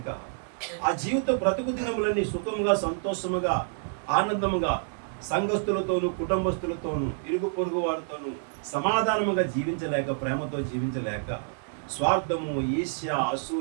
ఆ జీవిత బ్రతుకు దినములన్నీ సుఖముగా, సంతోషముగా, ఆనందముగా సంఘస్థులతోనూ, కుటుంబస్తులతోనూ, ఇరుగు పొరుగు వారితోనూ సమాధానముగా జీవించలేక, ప్రేమతో జీవించలేక, స్వార్థము, ఈర్ష్య,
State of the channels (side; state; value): left; silent; digital silence